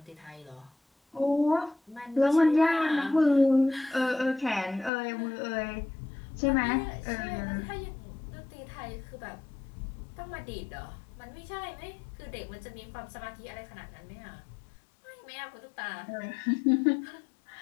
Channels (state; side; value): drops out; right; at 4.9 s